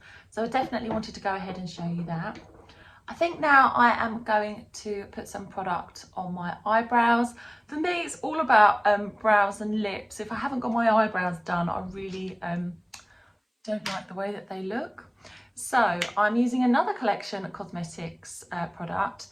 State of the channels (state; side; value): identical; both; correlation 1.00